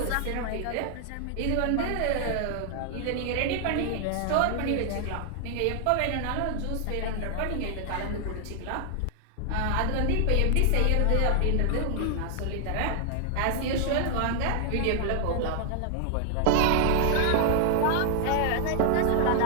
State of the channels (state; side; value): different; both; correlation 0.00